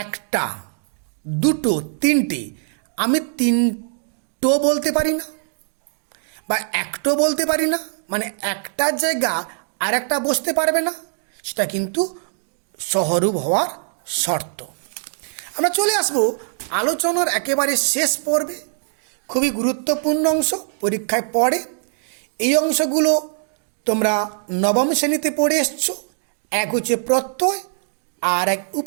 একটা, দুটো, তিনটে, আমি তিনটো বলতে পারি না বা একটো বলতে পারি না, মানে একটার জায়গা আর একটা বসতে পারবে না, সেটা কিন্তু সহরূপ হওয়ার শর্ত। আমরা চলে আসব আলোচনার একেবারে শেষ পর্বে। খুবই গুরুত্বপূর্ণ অংশ, পরীক্ষায় পড়ে। এই অংশগুলো তোমরা নবম শ্রেণীতে পড়ে এসছো। এক হচ্ছে প্রত্যয় আর এক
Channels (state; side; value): silent; left; digital silence